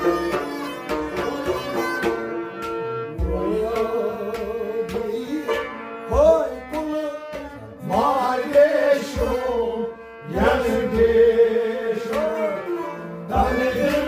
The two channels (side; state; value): both; identical; correlation 1.00